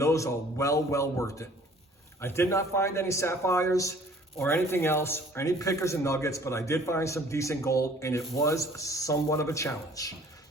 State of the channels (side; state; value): both; normal; correlation 0.54